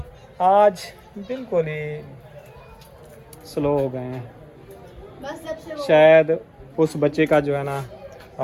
आज बिल्कुल ही स्लो हो गए हैं। बस जब से शायद उस बच्चे का जो है ना बस जब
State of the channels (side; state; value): both; identical; correlation 1.00